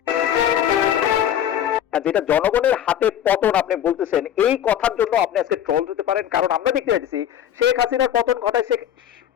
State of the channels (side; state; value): right; quieter; 10.3 dB